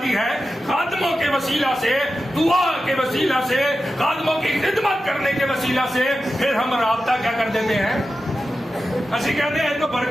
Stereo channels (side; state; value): both; normal; correlation 0.92